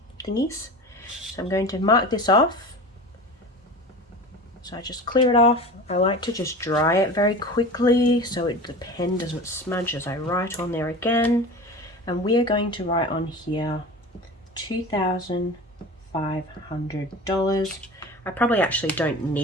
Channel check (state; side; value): normal; both; correlation 0.34